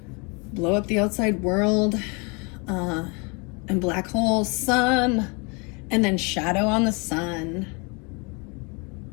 Blow Up the Outside World, and Black Hole Sun, and then Shadow on the Sun.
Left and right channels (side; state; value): right; quieter; 31.2 dB